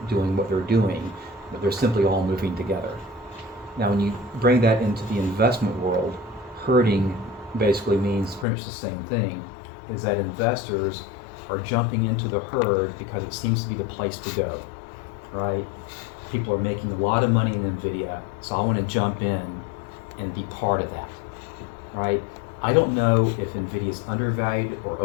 doing what they're doing, but they're simply all moving together. Now, when you bring that into the investment world, herding basically means pretty much the same thing, is that investors are jumping into the herd because it seems to be the place to go, right? People are making a lot of money in NVIDIA, so I want to jump in and be part of that, right? I don't know if NVIDIA is undervalued or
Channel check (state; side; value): drops out; right; at 8.5 s